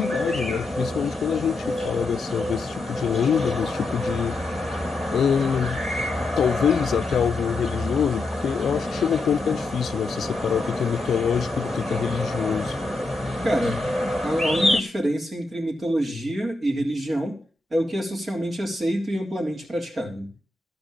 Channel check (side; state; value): right; quieter; 3.3 dB